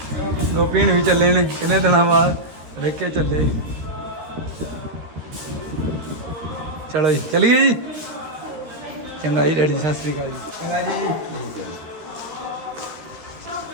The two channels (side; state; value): left; late; 13 ms